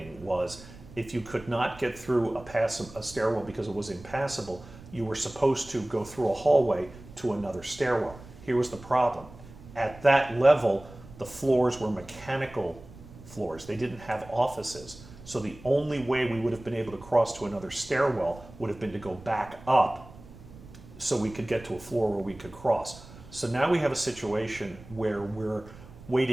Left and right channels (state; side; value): noise; right; rumble, 18 dB below the sound